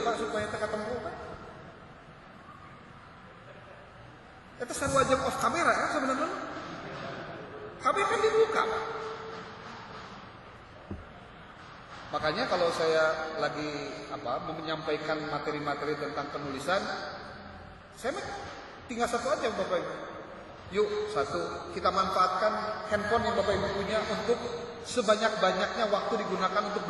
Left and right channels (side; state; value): both; identical; correlation 1.00